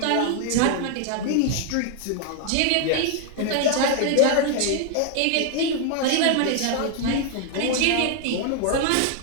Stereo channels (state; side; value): different; both; correlation 0.00